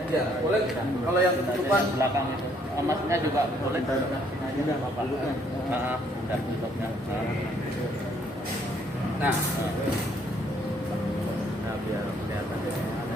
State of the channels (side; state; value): both; normal; correlation 0.66